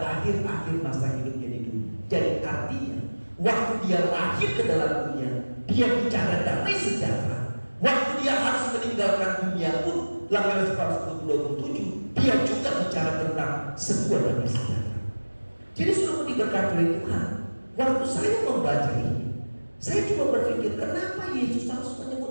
akhir-akhir masa hidupnya di dunia. Jadi artinya waktu Dia lahir ke dalam dunia, Dia bicara damai sejahtera. Waktu Dia harus meninggalkan dunia pun, Yohanes 14:27, Dia juga bicara tentang sebuah damai sejahtera. Jadi sudah diberkati oleh Tuhan. Waktu saya membaca ini, saya coba berpikir kenapa Yesus harus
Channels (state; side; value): inverted; both; correlation -1.00